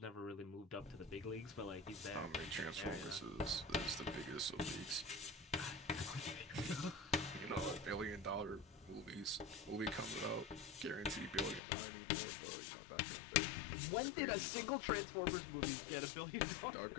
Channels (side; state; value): right; drops out; at 11.6 s